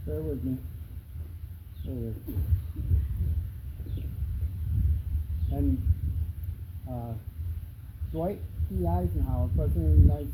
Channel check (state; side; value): identical; both; correlation 1.00